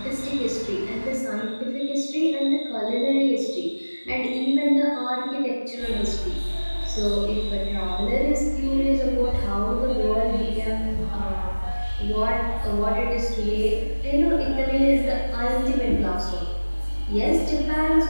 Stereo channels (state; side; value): inverted; both; correlation -1.00